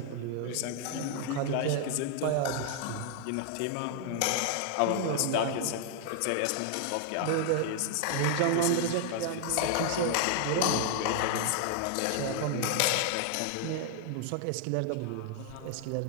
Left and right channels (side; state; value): both; different; correlation 0.00